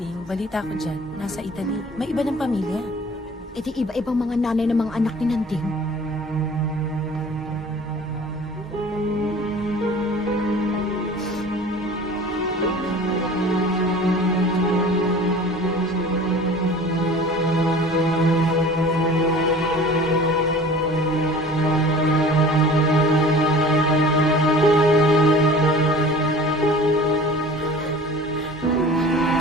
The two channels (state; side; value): normal; both; correlation 0.43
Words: balita ko dyan, nasa Italy. May iba ng pamilya. E di iba-ibang mga nanay ng mga anak ni Nanding.